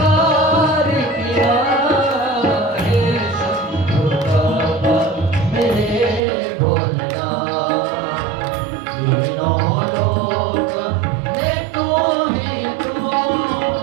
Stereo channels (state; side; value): drops out; left; at 6.2 s